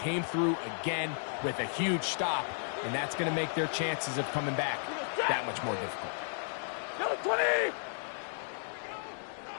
through again with a huge stop, and that's going to make their chances of coming back that much more difficult. Number 20!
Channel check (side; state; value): right; silent; digital silence